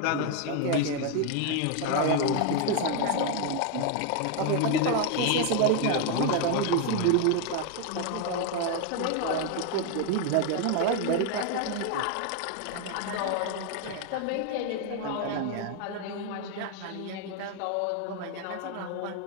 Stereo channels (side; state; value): both; different; correlation 0.01